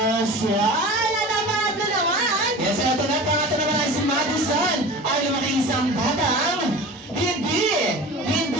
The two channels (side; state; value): both; normal; correlation 0.36